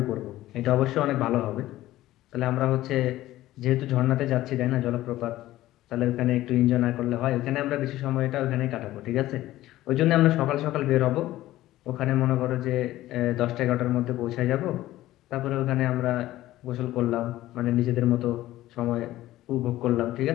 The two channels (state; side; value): quieter; right; 15.5 dB